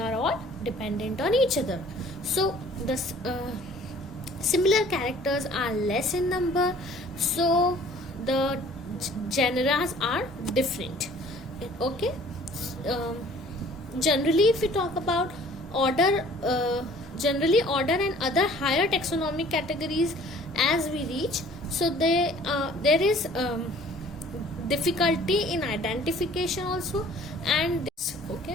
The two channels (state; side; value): normal; both; correlation 0.52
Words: all dependent on each other. So the similar characters are less in number, so the genera are different. Okay. Generally, if we talk about order, generally order and other higher taxonomic categories as we reach, so there is difficulty in identification also, and this, okay,